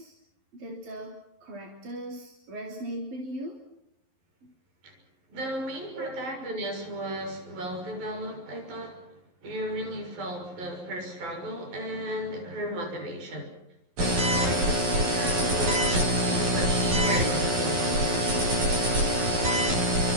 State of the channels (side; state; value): left; late; 11 ms